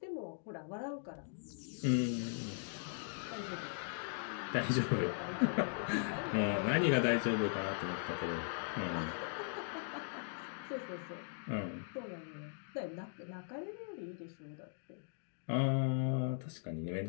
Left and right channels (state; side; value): silent; right; digital silence